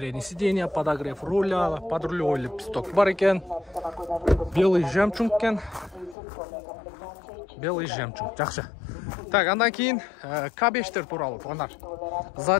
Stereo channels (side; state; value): right; drops out; at 6.2 s